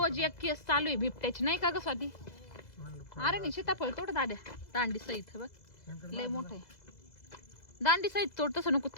एक केस चालू आहे बिबट्याची नाही का ग स्वाती अरे नाही सीताफळ तोड दाद्या दांडी सहित बघ लय मोठं आहे दांडी सहित तोड तसं नको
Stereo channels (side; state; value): right; late; 2.0 ms